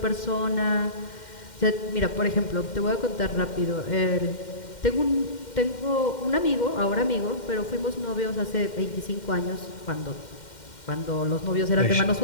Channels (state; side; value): late; right; 2.1 ms